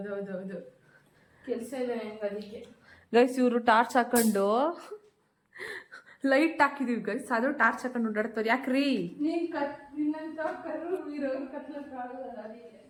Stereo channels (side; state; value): both; identical; correlation 1.00